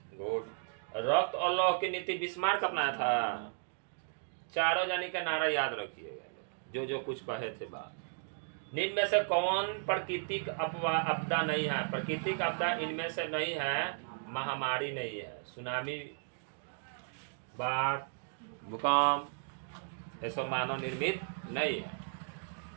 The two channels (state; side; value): silent; left; digital silence